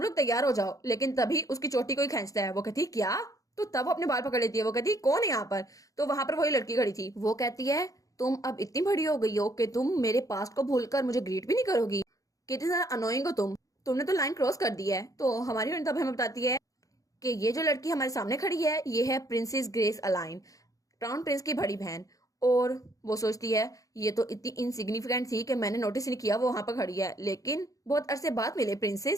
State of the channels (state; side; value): late; right; 0.17 ms